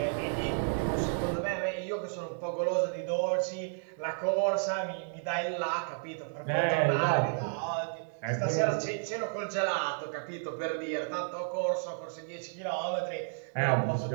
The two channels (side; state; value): left; silent; digital silence